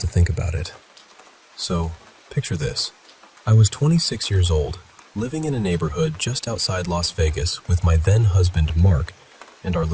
think about it. So, picture this. I was 26 years old, living in a neighborhood just outside Las Vegas with my then-husband Mark and our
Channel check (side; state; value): both; identical; correlation 1.00